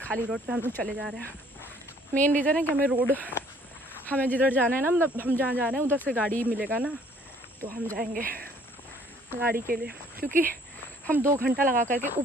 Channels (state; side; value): normal; both; correlation 0.59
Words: खाली रोड पे हम लोग चले जा रहे हैं। मेन रीज़न है कि हमें जिधर जाना है ना, मतलब हम जहाँ जा रहे हैं उधर से गाड़ी मिलेगा ना, तो हम जाएंगे गाड़ी के लिए, क्योंकि हम 2 घंटा लगा करके